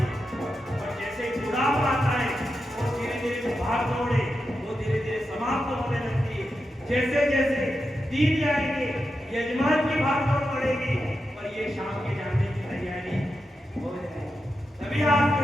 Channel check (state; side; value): normal; both; correlation 0.88